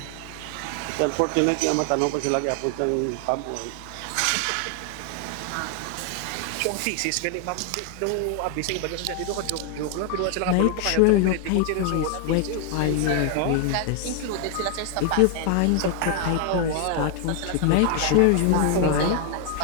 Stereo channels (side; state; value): both; different; correlation 0.00